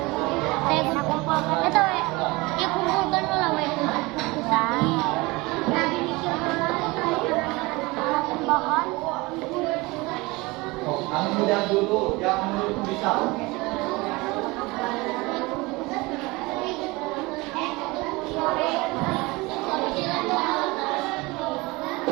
yang muda dulu, yang menurut bisa.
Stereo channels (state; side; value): quieter; left; 23.3 dB